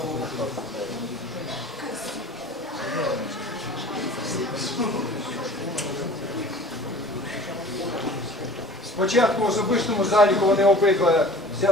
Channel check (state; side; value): normal; both; correlation 0.44